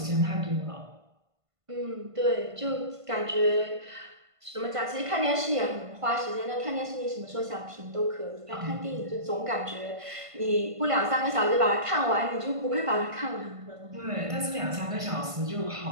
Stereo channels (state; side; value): late; left; 1.5 ms